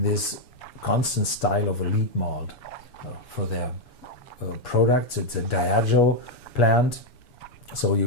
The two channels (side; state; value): right; late; 7.0 ms